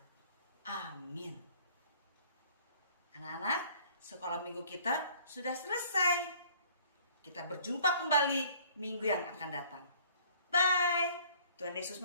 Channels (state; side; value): inverted; both; correlation -0.55